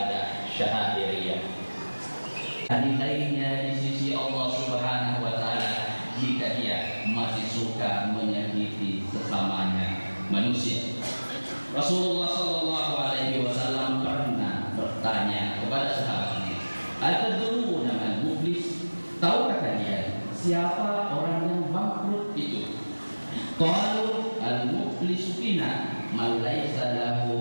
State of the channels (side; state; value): both; inverted; correlation -1.00